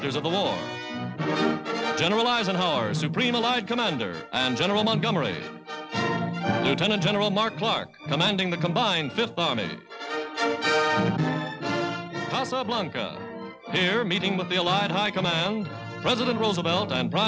of the war. General Eisenhower, Supreme Allied Commander, and General Montgomery. Lieutenant General Mark Clark, commanding the combined 5th Army. Casablanca. Here, meeting with the Allied High Command, President Roosevelt and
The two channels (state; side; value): identical; both; correlation 1.00